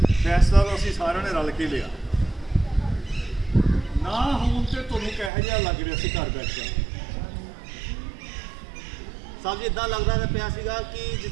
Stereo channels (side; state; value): left; drops out; at 5.3 s